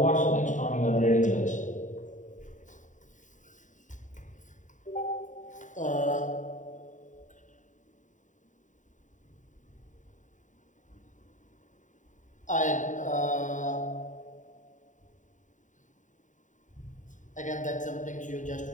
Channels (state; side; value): late; right; 0.36 ms